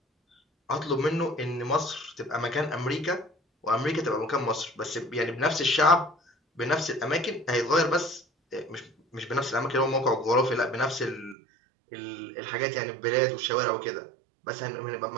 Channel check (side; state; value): left; drops out; at 11.4 s